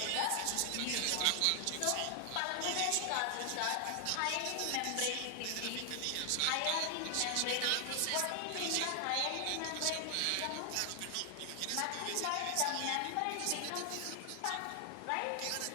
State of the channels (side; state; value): both; different; correlation 0.00